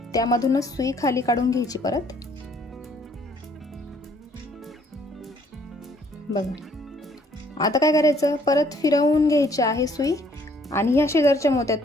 त्यामधूनच सुई खाली काढून घ्यायची परत. बघा, आता काय करायचं, परत फिरवून घ्यायची आहे सुई आणि ह्या शेजारच्या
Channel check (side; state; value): both; normal; correlation 0.63